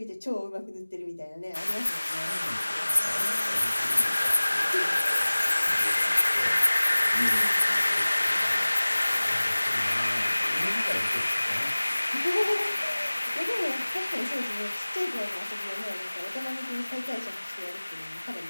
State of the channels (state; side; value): inverted; both; correlation -1.00